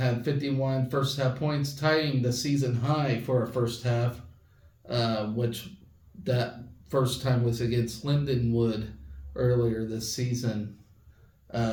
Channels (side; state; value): both; identical; correlation 1.00